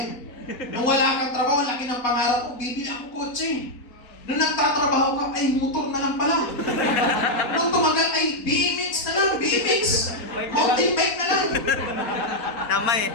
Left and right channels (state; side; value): late; right; 4.1 ms